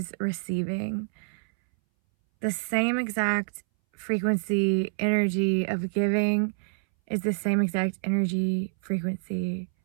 receiving. The same exact frequency, energy of giving is the same exact energy, frequency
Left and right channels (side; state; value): left; silent; 60 dB below the other